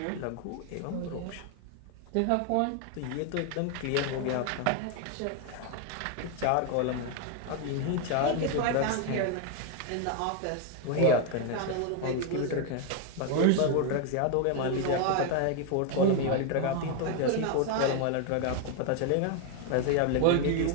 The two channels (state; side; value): different; both; correlation 0.01